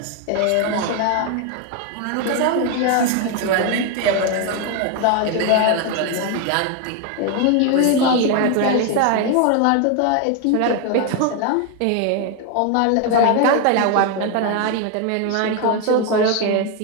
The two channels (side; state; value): both; different; correlation 0.01